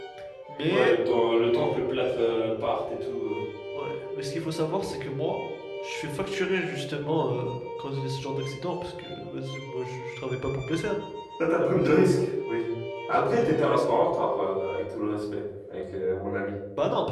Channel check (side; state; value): both; identical; correlation 1.00